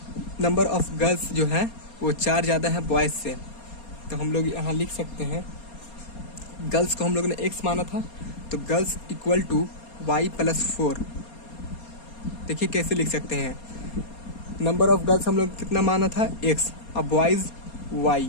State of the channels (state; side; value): late; right; 4.3 ms